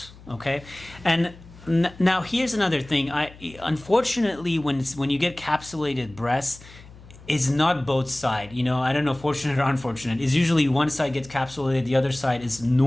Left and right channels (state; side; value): noise; left; hum, 21 dB below the sound